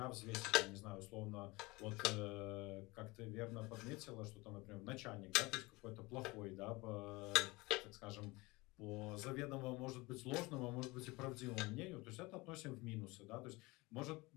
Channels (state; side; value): quieter; right; 23.2 dB